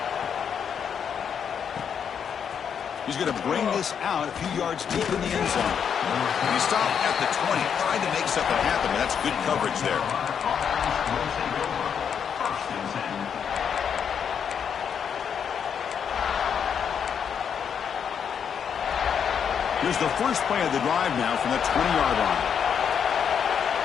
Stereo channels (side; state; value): right; quieter; 7.6 dB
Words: He's going to bring this out a few yards deep in the end zone. He stopped at the 20, trying to make something happen, but that's good coverage there. Here's the first play of the drive now from the 20-yard line.